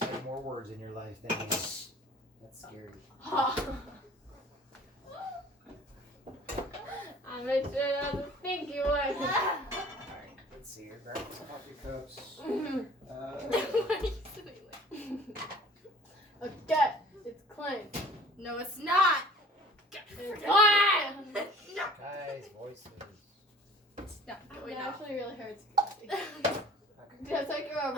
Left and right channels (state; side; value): normal; both; correlation 0.48